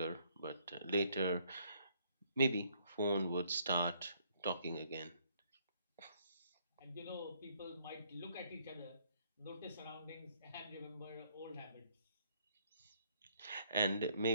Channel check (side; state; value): both; inverted; correlation -0.67